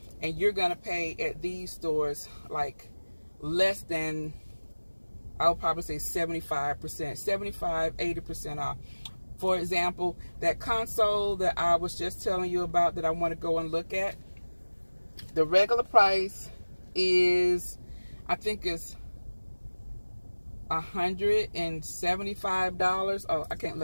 and you're going to pay at these stores like less than, I'll probably say 75%, 75, 80% off. For example, that console that I was just telling you about that I want to go and look at, the regular price is, I think it's $175. Oh, I can't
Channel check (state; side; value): inverted; both; correlation -1.00